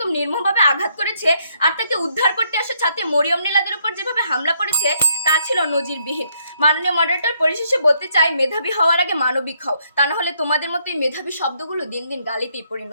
নির্মমভাবে আঘাত করেছে, আর তাকে উদ্ধার করতে আসা ছাত্রী মরিয়ম নীলাদের উপর যেভাবে হামলা করেছে, তা ছিল নজিরবিহীন। মাননীয় মডারেটর, পরিশেষে বলতে চাই, মেধাবী হওয়ার আগে মানবিক হও, তা না হলে তোমাদের মতোই মেধাবী শব্দগুলো দিন দিন গালিতেই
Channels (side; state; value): both; inverted; correlation -0.72